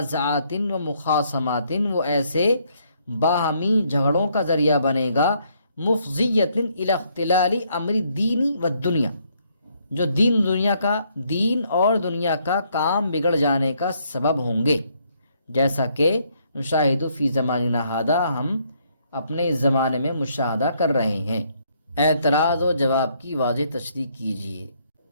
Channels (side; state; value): both; inverted; correlation -0.70